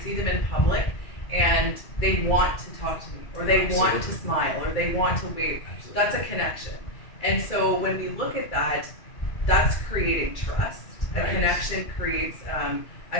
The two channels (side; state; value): right; late; 2.3 ms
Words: see them in public and they want to talk to me or they want to smile or they want to wave. That's a connection. And so when we look at that, that's creating trust. A connection creates